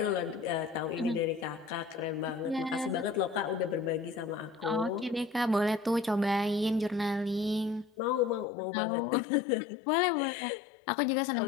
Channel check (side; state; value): right; drops out; at 8.5 s